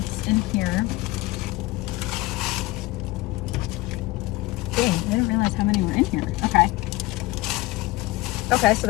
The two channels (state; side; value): quieter; right; 20.2 dB